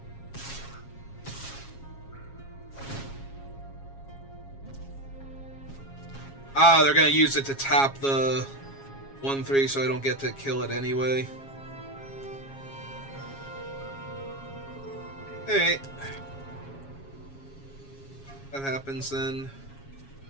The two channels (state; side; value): late; right; 7.3 ms